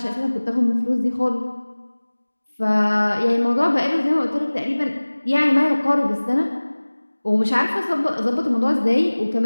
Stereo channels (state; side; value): inverted; both; correlation -1.00